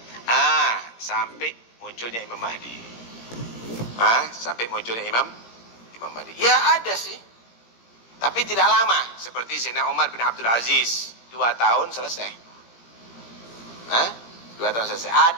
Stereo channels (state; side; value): late; right; 17 ms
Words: Sampai munculnya Imam Mahdi. Sampai munculnya Imam Mahdi. Ya ada sih. Tapi tidak lama. Seperti Sayyidina Umar bin Abdul Aziz. 2 tahun selesai. 2 tahun selesai.